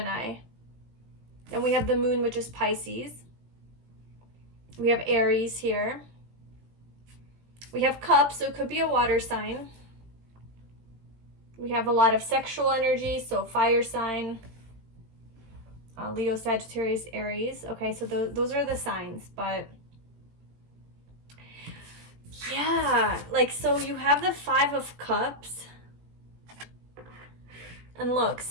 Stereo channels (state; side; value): late; left; 18 ms